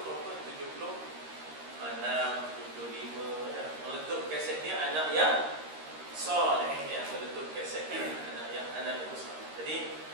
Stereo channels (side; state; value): left; late; 13 ms